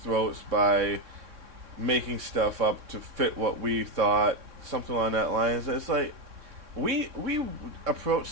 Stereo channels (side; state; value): left; late; 3.6 ms